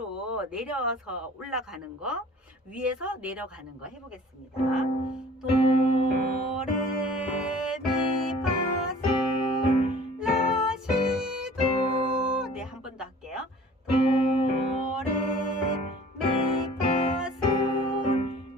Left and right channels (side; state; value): both; normal; correlation 0.48